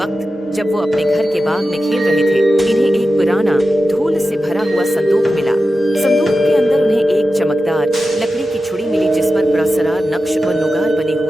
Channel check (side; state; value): both; normal; correlation 0.92